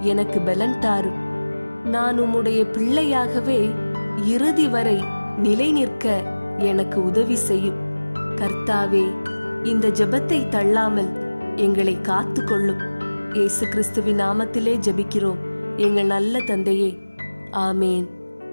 எனக்கு பலன் தாரும். நான் உம்முடைய பிள்ளையாகவே இறுதி வரை நிலை நிற்க எனக்கு உதவி செய்யும். கர்த்தாவே, இந்த ஜெபத்தை தள்ளாமல் எங்களை காத்து கொள்ளும். இயேசு கிறிஸ்துவின் நாமத்திலே ஜெபிக்கிறோம் எங்கள் நல்ல தந்தையே. ஆமேன்,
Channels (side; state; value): both; inverted; correlation -1.00